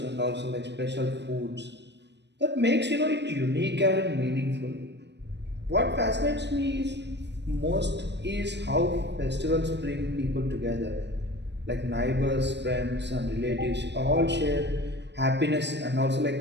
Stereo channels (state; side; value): late; left; 0.50 ms